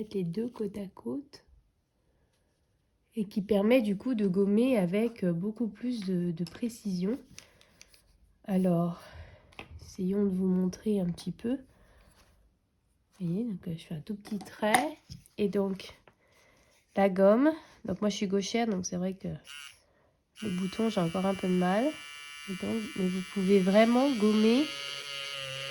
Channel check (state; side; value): identical; both; correlation 1.00